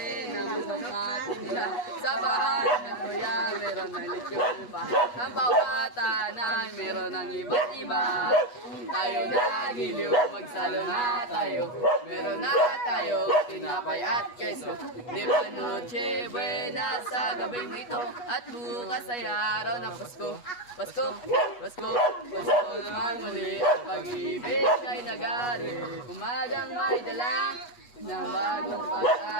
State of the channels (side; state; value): right; late; 8.3 ms